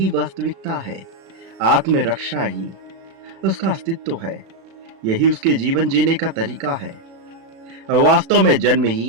वास्तविकता है, आत्मरक्षा ही उसका अस्तित्व है, यही उसके जीवन जीने का तरीका है। वास्तव में जन्म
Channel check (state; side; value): late; left; 36 ms